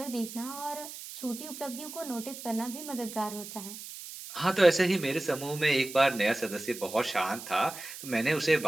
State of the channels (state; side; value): noise; right; hiss, 12 dB below the sound